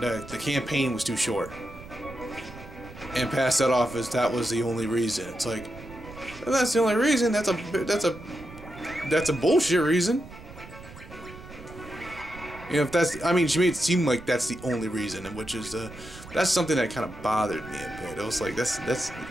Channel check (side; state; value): right; noise; rumble, 16 dB below the sound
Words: campaign was too short. And pass that off as that was the only reason. It's like, well, that's the only reason. That's a bullshit reason. If that's, I mean, she made it seem like that's the only reason, and which is that's something that kind of bothered me a bit. It was like that's